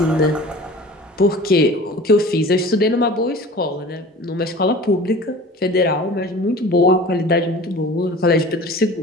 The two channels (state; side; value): normal; both; correlation 0.41